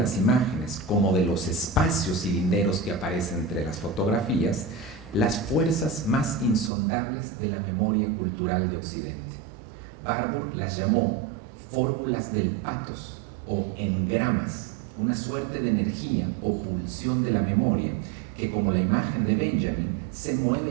imágenes como de los espacios cilinderos que aparecen entre las fotografías, las fuerzas más insondables de la memoria cultural de Occidente. Warburg las llamó fórmulas del pathos o engramas, una suerte de energía o pulsión de la memoria que, como la imagen de Benjamin, se mueve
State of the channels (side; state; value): left; drops out; at 6.7 s